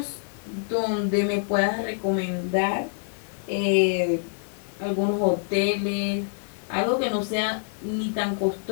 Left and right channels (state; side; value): silent; right; digital silence